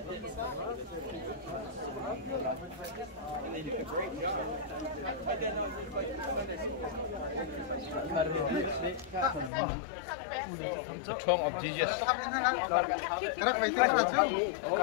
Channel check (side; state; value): right; drops out; at 9.5 s